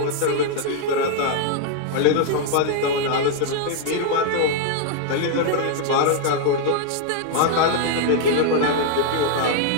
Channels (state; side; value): different; both; correlation 0.00